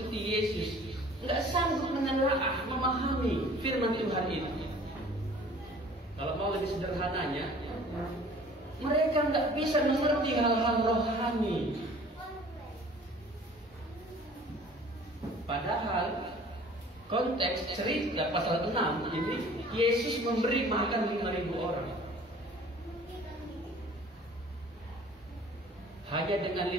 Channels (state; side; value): normal; both; correlation 0.49